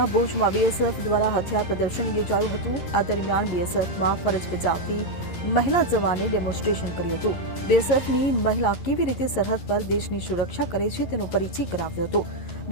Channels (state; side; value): late; right; 11 ms